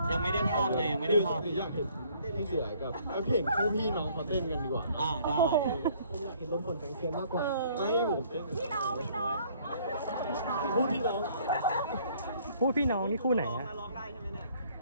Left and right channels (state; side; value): inverted; both; correlation -0.60